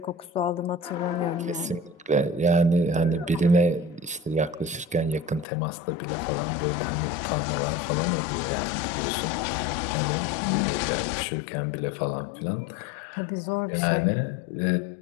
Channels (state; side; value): drops out; right; at 5.5 s